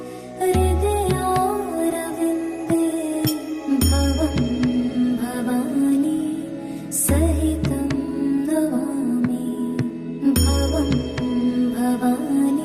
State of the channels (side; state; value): both; identical; correlation 1.00